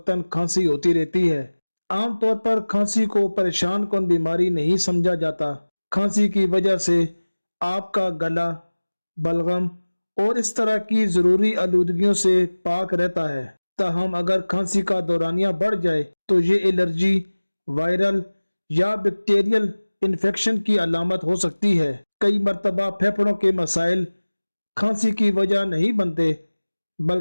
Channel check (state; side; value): inverted; both; correlation -1.00